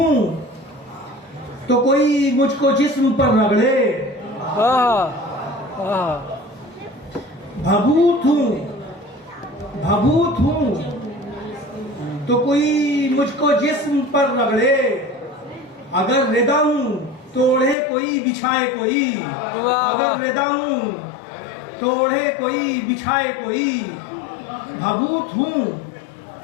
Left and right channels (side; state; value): right; drops out; at 17.8 s